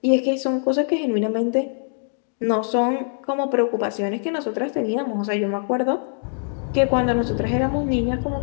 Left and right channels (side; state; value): right; silent; digital silence